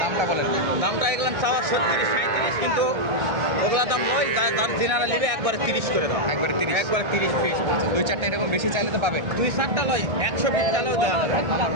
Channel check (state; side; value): late; left; 1.6 ms